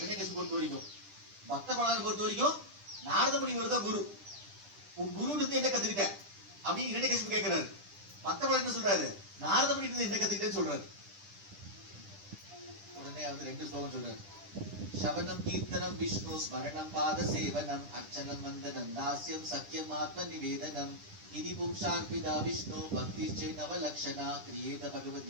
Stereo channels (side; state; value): left; late; 10 ms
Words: பொறுத்த வரைக்கும், பக்த பிரகலாதனை பொறுத்த வரைக்கும் நாரத முனிவர் தான் குரு. உன் குரு இருந்து என்ன கத்துக்கிட்ட அப்படின்னு இரண்யகசிபு கேட்கிறாரு. பக்த பிரகலாதன் என்ன சொல்றாரு? நாரத முனி இருந்து என்ன கத்துக்கிட்டேன்னு சொல்றாரு. உடனே வந்து 2 ஸ்லோகம் சொல்றாரு. சவனம் கீர்த்தனம் விஷ்ணு ஸ்மரணம் பாத சேவனம் அர்ச்சனம் வந்தனம் தாஸ்யம் சக்கியம் ஆத்ம நிவேதனம் இதி பும்சார்பிதா விஷ்ணு பக்தி சே நவலக்ஷணா கிரியேத